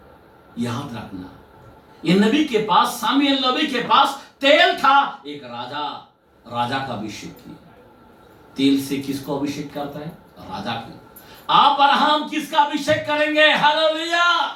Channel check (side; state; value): both; identical; correlation 1.00